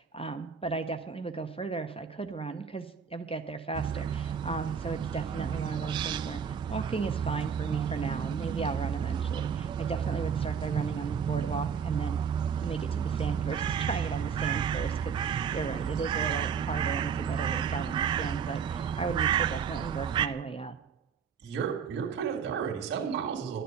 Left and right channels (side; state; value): left; quieter; 6.7 dB